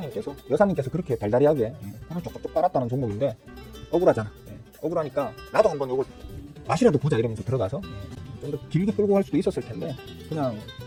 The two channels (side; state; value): both; identical; correlation 1.00